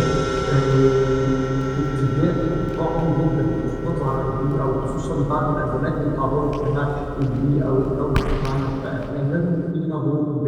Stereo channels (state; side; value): identical; both; correlation 1.00